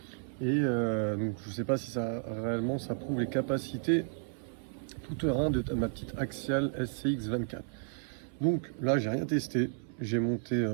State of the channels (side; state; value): left; silent; 56 dB below the other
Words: et donc je sais pas si ça réellement ça prouve les capacités tout terrain de ma petite Axial SCX 24. Donc là j'ai rien testé, j'ai monté